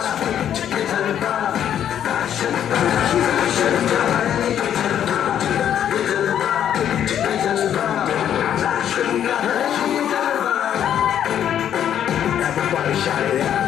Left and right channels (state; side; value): quieter; right; 9.9 dB